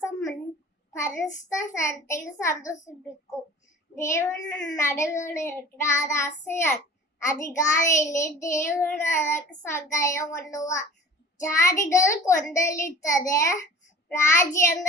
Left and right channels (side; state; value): both; normal; correlation 0.44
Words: பரிசுத்த சரத்தையும் சந்தோஷிப்பிக்கும். தேவன் நடுவில் இருக்கிறார், அது அசையார். அதிகாலையிலே தேவன் அதற்கு சகாயம் பண்ணுவார். ஜாதிகள் கொந்தளித்தது,